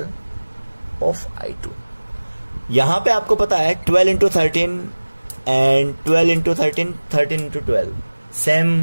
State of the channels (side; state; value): both; inverted; correlation -1.00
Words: of I2। यहां पे आपको पता है 12 into 13 and 12 into 13 13 into 12